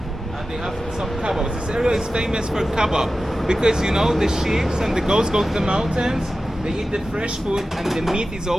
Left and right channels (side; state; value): both; normal; correlation 0.94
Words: And they have some kebabs. This area is famous for kebab because you know the sheep and the goats go to the mountains. They eat the fresh food, and the meat is